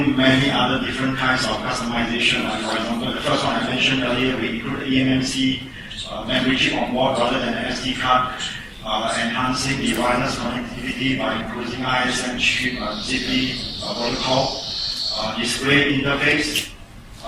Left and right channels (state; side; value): identical; both; correlation 1.00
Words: many other different kinds of customization. For example, the first one I mentioned earlier, we include eMMC memory chip on board rather than an SD card, enhancing the wireless connectivity by including ISM chip, ZigBee protocol, display interface,